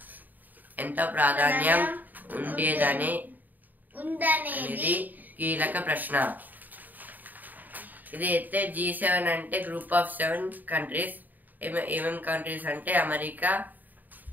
ఎంతో ప్రాధాన్యం ఉండేదని కీలక ప్రశ్న. ఇదైతే G7 అంటే గ్రూప్ ఆఫ్ 7 కంట్రీస్. ఏమేం కంట్రీస్ అంటే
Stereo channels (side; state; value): left; late; 0.085 ms